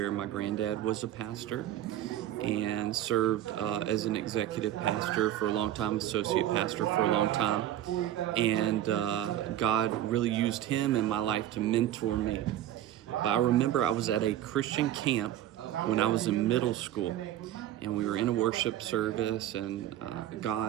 my granddad was a pastor and served as an executive pastor for a long time, associate pastor for a long time. And God really used him in my life to mentor me. But I remember I was at a Christian camp when I was in middle school, and we were in a worship service, and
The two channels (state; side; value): quieter; left; 12.6 dB